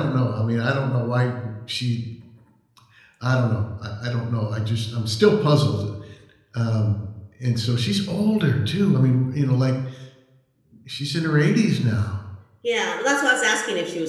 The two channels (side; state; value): both; identical; correlation 1.00